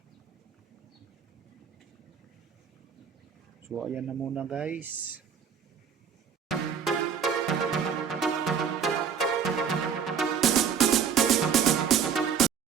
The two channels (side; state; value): left; quieter; 7.1 dB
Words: So ayan na muna guys.